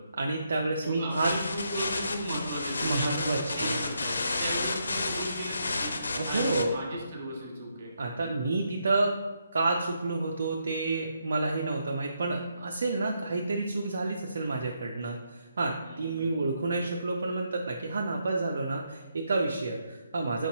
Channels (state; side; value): inverted; both; correlation -0.79